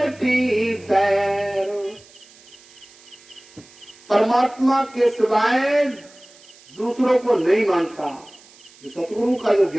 सैर। परमात्मा के सिवाय दूसरों को नहीं मानता। जो सतगुरु का जो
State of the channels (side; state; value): right; noise; hiss, 25 dB below the sound